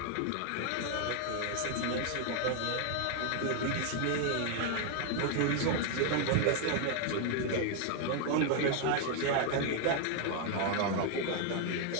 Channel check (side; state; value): both; different; correlation 0.00